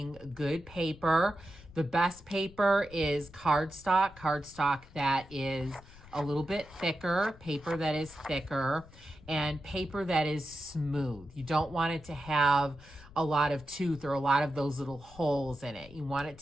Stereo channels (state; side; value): noise; left; rumble, 20 dB below the sound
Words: good paper. The best paper is cardstock that is a little bit thicker, paper that is thicker, and paper that is smooth. You don't want it to have a lot of tooth or a lot of those little holes in it. You want it